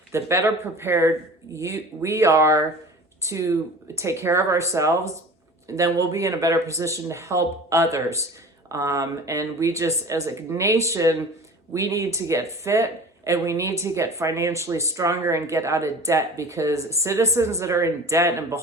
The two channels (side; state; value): both; normal; correlation 0.39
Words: the better prepared we are to take care of ourselves, then we'll be in a better position to help others. And we just, as a nation, we need to get fit, and we need to get financially stronger and get out of debt, because citizens that are in debt and